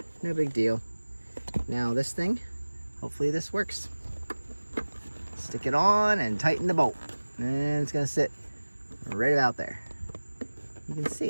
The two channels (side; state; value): both; inverted; correlation -1.00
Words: no big deal. Now this thing, hopefully this works. Stick it on and tighten the bolt. And it's gonna sit right about there. You can